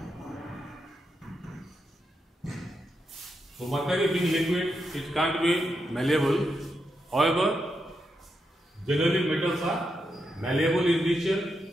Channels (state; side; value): normal; both; correlation 0.84